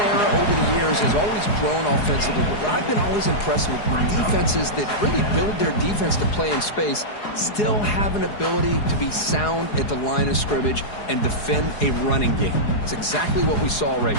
over the years has always grown offensively. But what I've been always impressed with when defenses that really build their defense to play in space still have an ability to be sound at the line of scrimmage and defend a running game. It's exactly what we saw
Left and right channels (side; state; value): right; late; 4.8 ms